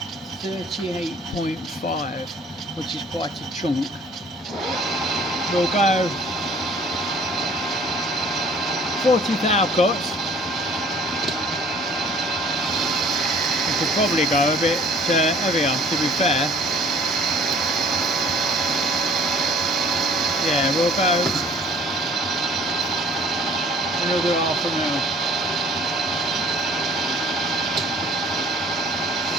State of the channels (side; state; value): both; normal; correlation 0.53